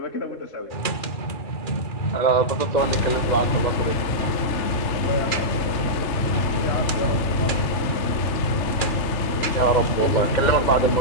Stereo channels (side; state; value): right; late; 2.4 ms